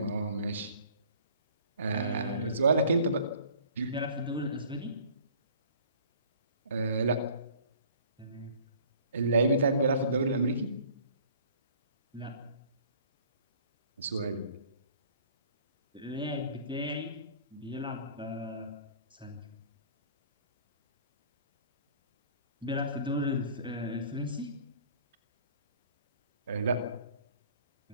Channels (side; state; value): both; inverted; correlation -0.51